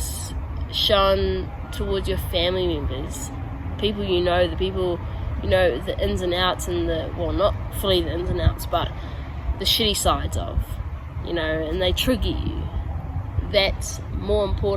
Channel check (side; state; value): both; identical; correlation 1.00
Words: shown towards your family members, people the people, the ins and outs and not fully the ins and outs, but the shitty sides of, and they trigger you. That's more